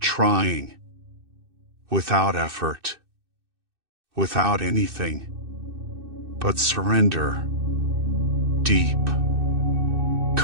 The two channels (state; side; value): late; left; 2.6 ms